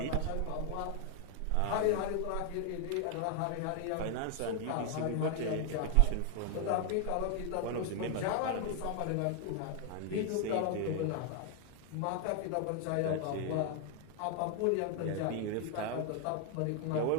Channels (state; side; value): different; both; correlation 0.00